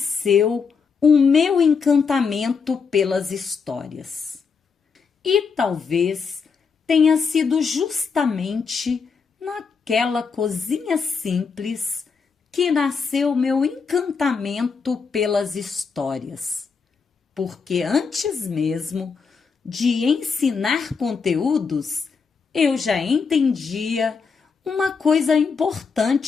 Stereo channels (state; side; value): quieter; right; 5.5 dB